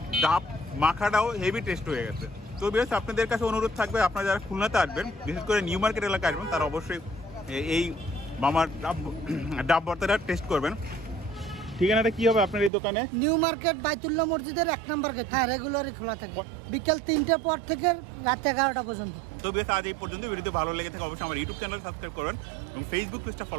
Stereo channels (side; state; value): left; drops out; at 12.7 s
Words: ডাব মাখাটাও হেভি টেস্ট হয়ে গেছে। তো বেশ আপনাদের কাছে অনুরোধ থাকবে, আপনারা যারা খুলনাতে আসবেন, বিশেষ করে নিউ মার্কেট এলাকায় আসবেন, তারা অবশ্যই এই মামার ডাব ভর্তাটা টেস্ট করবেন। ঠিকানাটা কি হবে আপনার এই দোকানে? নিউ মার্কেট বাইতুল্লাহ মসজিদের 1 নম্বর গেট। হ্যাঁ, রেগুলারই খোলা থাকে বিকেল 3টার পর থেকে রাত 11টা পর্যন্ত। তো বেশ আজ এই পর্যন্ত। ভিডিওতে ভালো লেগে থাকে অবশ্যই আমার ইউটিউব চ্যানেল সাবস্ক্রাইব করবেন এবং ফেসবুক পেজটা